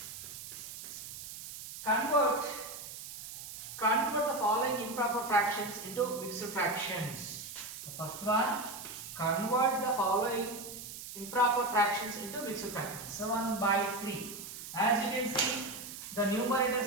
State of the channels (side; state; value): right; noise; hiss, 11 dB below the sound